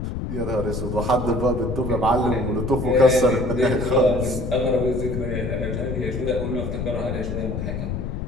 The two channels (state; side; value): noise; left; rumble, 4 dB below the sound